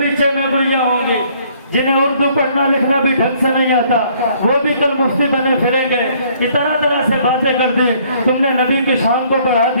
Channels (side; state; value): both; inverted; correlation -0.62